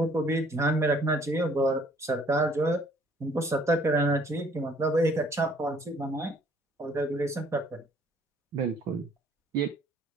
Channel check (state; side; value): normal; both; correlation 0.60